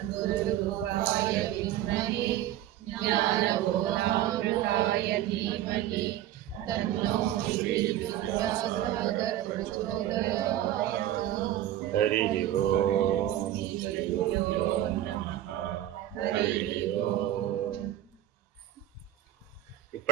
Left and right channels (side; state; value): left; quieter; 13.0 dB